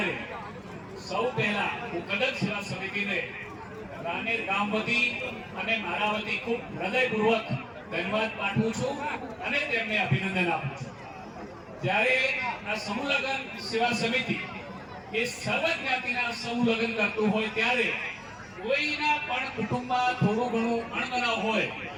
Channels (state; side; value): identical; both; correlation 1.00